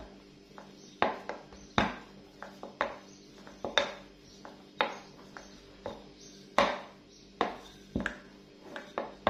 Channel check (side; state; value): both; identical; correlation 1.00